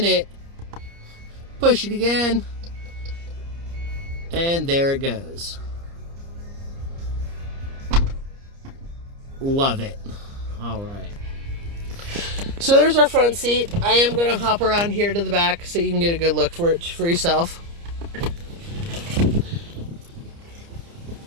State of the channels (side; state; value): left; late; 29 ms